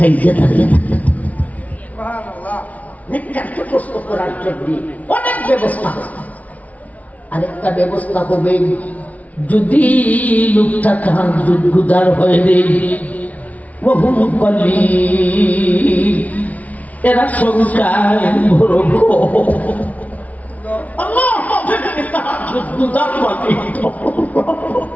দাঁড়িয়ে থাকে। নেককারকে প্রশ্ন করার জন্য অনেক ব্যবস্থা হবে। আরেকটা ব্যবস্থা হবে, যদি লোকটা তাহাজ্জুদ গুজার হয়ে দেয়, ওহুম কলিল, এরা সংখ্যায় বড় আল্লাহ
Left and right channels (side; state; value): right; late; 0.071 ms